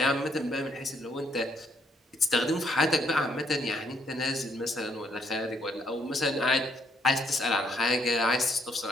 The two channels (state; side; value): normal; both; correlation 0.72